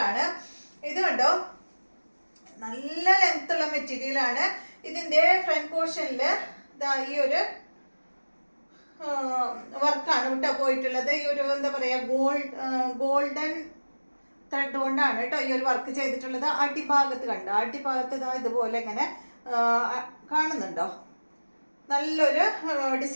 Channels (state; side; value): inverted; both; correlation -1.00